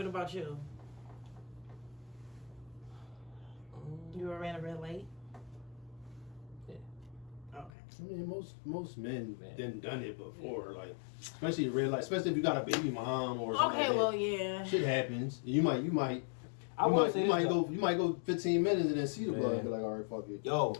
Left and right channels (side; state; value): right; drops out; at 7.7 s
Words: about you? You ever ran a red light? Yeah. Okay. I mean, most men Man. done it before, like especially red light, especially if you got a baby mom or something. Okay, like well, that. yeah. Shit happens. You might I will say you this, might though. go 15 minutes and then see the blood Man. and be like, all right, fuck it. Yo,